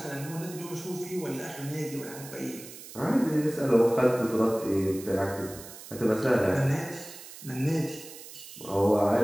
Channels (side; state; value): right; noise; hiss, 15 dB below the sound